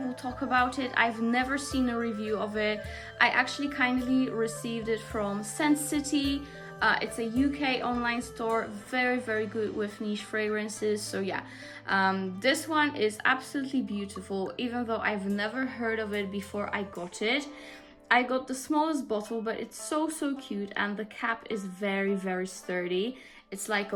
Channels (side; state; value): both; identical; correlation 1.00